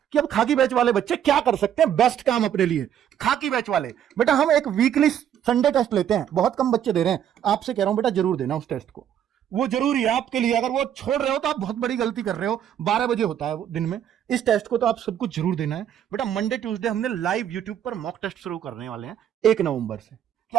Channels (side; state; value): left; quieter; 9.9 dB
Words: अब खाकी बैच वाले बच्चे क्या कर सकते हैं बेस्ट काम अपने लिए। खाकी बैच वाले बेटा हम एक वीकली संडे टेस्ट लेते हैं, बहुत कम बच्चे दे रहे हैं, आपसे कह रहा हूं बेटा जरूर देना उस टेस्ट को, वो जरूरी है आपके लिए। अगर वो छोड़ रहे हो तो आप बहुत बड़ी गलती कर रहे हो। 12 बजे होता है दिन में, इस टेस्ट को तो आप सबको जरूर देना है बेटा। मंडे ट्यूसडे हमने लाइव यूट्यूब पर मॉक टेस्ट शुरू करने वाले हैं 1 नवंबर से, कि